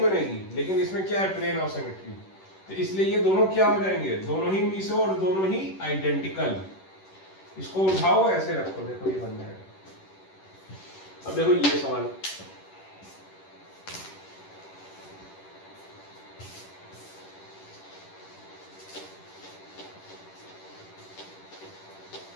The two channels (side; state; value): right; late; 10 ms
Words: लेकिन इसमें क्या है प्लेन ऑफ सिमेट्री, तो इसलिए ये दोनों क्या हो जाएंगे, दोनों ही मीसो और दोनों ही आइडेंटिकल। इसको उठाओ ऐसे रखो, देखो ये बन जाएगा। अब देखो ये सवाल,